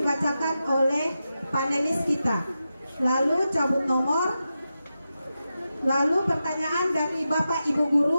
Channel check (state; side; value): inverted; both; correlation -0.90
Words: oleh panelis kita. Lalu cabut nomor. Lalu pertanyaan dari Bapak Ibu